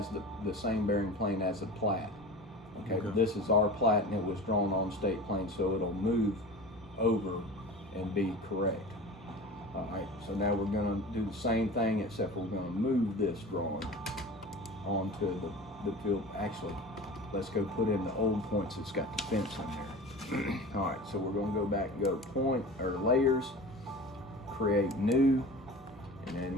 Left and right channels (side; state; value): both; normal; correlation 0.35